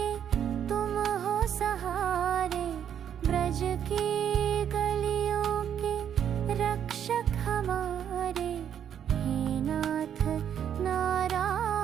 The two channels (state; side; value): quieter; left; 9.1 dB